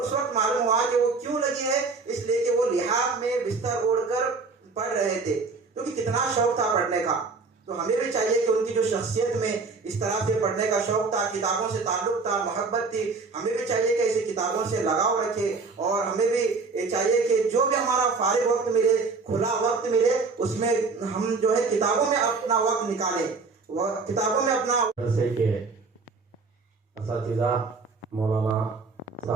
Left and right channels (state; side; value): quieter; left; 4.3 dB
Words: वक्त मालूम हुआ कि वो क्यों लगी है, इसलिए कि वो लिहाफ में बिस्तर ओढ़कर पढ़ रहे थे, क्योंकि कितना शौक था पढ़ने का। तो हमें भी चाहिए कि उनकी जो शख्सियत में इस तरह से पढ़ने का शौक था, किताबों से ताल्लुक था, मोहब्बत थी, हमें भी चाहिए कि ऐसी किताबों से लगाव रखें। और हमें भी चाहिए कि जो भी हमारा फारिग वक्त मिले, खुला वक्त मिले, उसमें हम जो है किताबों में अपना वक्त निकालें, किताबों में अपना। जैसे कि असातिज़ा मौलाना